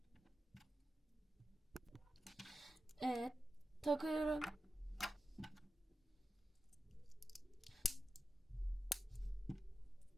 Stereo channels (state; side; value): normal; both; correlation 0.92